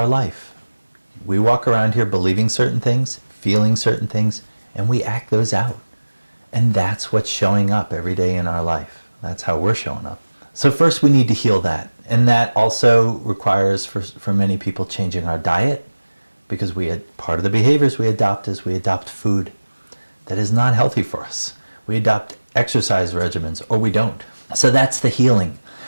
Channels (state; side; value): inverted; both; correlation -1.00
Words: life. We walk around here believing certain things, feeling certain things, and we act those out. And that's what's showing up every day in our life. That's how we're showing up. So first we need to heal that. And that also requires, for many people, changing our diet, because part of the behaviors we adopt is we adopt food that is not healthy for us. We adopt exercise regimens, or we don't. So that's the healing.